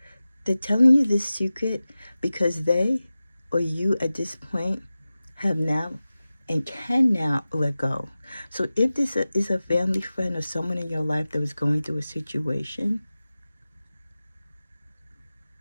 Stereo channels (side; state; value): both; inverted; correlation -0.96